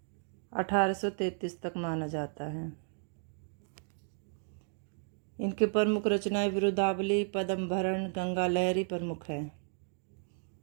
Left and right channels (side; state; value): left; silent; 55 dB below the other